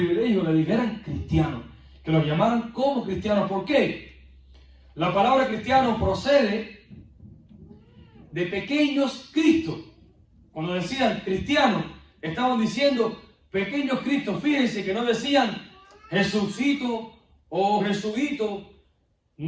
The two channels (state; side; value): identical; both; correlation 1.00